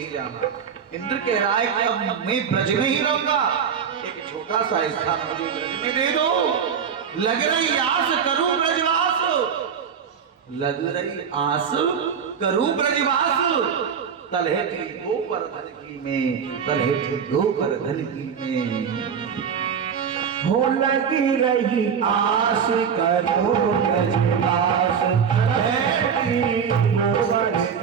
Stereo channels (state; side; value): quieter; left; 7.1 dB